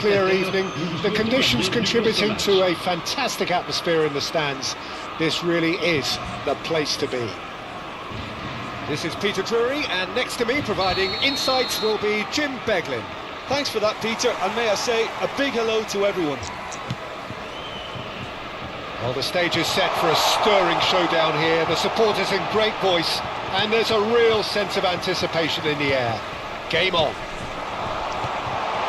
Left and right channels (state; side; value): identical; both; correlation 1.00